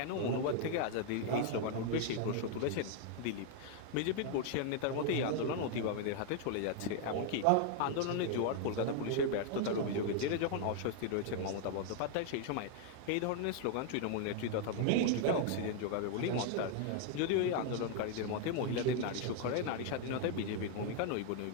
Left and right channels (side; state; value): both; different; correlation 0.00